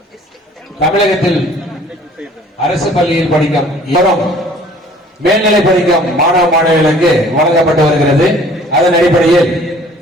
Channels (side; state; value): both; normal; correlation 0.52